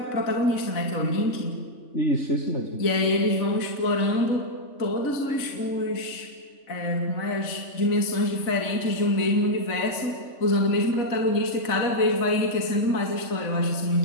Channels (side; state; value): right; late; 3.5 ms